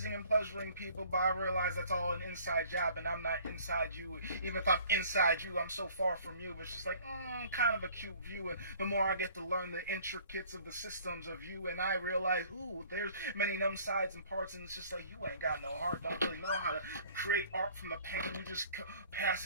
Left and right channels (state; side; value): inverted; both; correlation -0.53